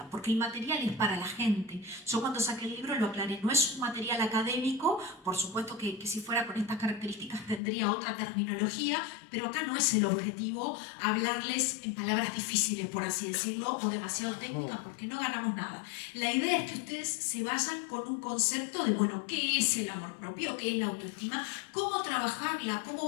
porque el material es para la gente. Yo cuando saqué el libro lo aclaré, no es un material académico, por supuesto que si fuera con estas características tendría otra terminología, pero acá no es el objetivo hablarles en palabras difíciles, por así decirlo, o demasiado técnicas, porque no ganamos nada. La idea es que ustedes se vayan con un concepto de, bueno, ¿qué es el amor propio? ¿Qué es la autoestima? ¿Cómo trabajarla? ¿Cómo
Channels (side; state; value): right; drops out; at 7.6 s